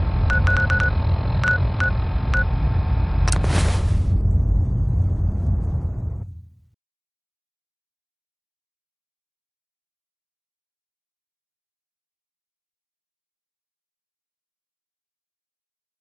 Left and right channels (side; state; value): both; identical; correlation 1.00